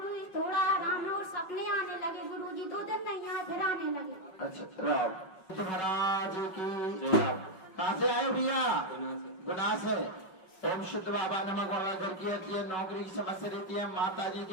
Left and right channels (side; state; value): right; late; 5.4 ms